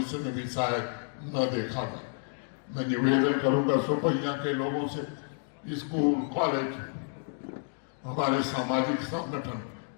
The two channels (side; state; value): right; silent; 58 dB below the other